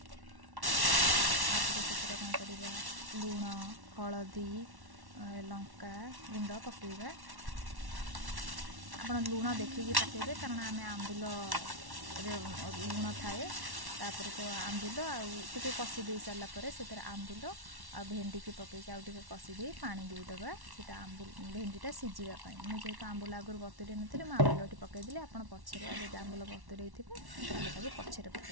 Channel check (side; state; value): left; late; 1.1 ms